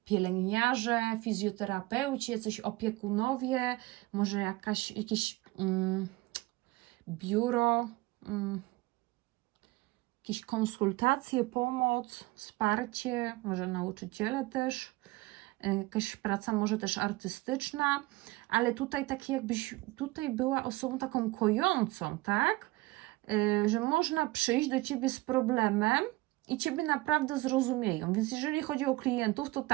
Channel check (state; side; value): quieter; left; 20.9 dB